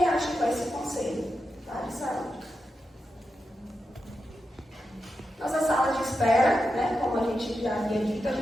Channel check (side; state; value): both; normal; correlation 0.88